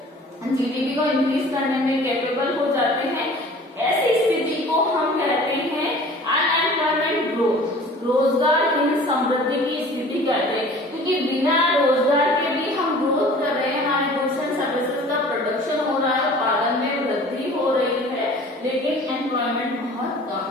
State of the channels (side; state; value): both; normal; correlation 0.46